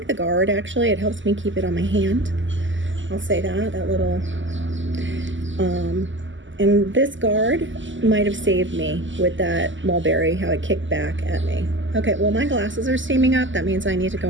the guard actually. It helps me keep it on my hand. I'll say that little and this guard might have saved me with that mulberry, how it kicked back at me. Okay, well my glasses are steaming up. That means I need to go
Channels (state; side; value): late; left; 0.55 ms